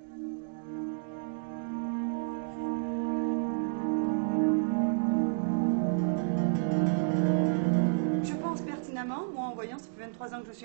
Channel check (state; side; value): silent; left; digital silence